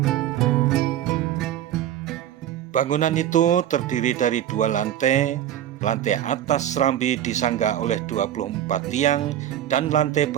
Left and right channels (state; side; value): quieter; left; 11.5 dB